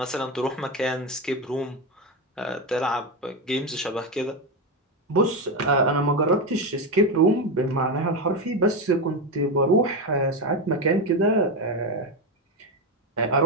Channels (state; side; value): normal; both; correlation 0.13